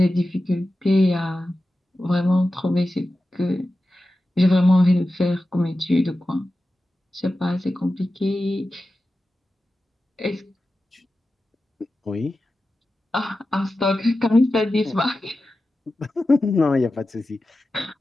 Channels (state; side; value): normal; both; correlation 0.93